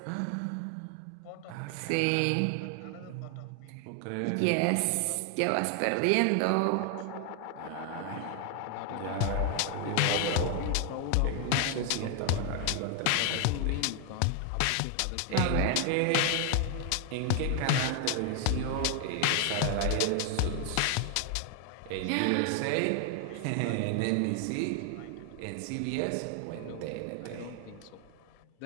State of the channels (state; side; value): different; both; correlation 0.00